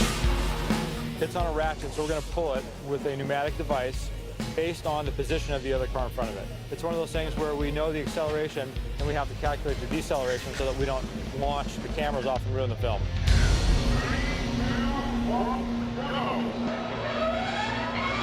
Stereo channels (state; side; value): identical; both; correlation 1.00